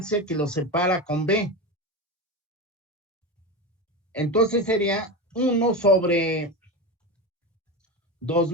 que lo separa con B, entonces sería 1 sobre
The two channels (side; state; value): both; normal; correlation 0.21